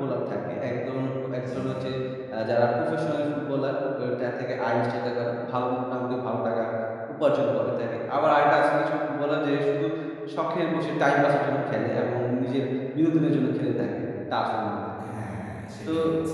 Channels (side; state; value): both; identical; correlation 1.00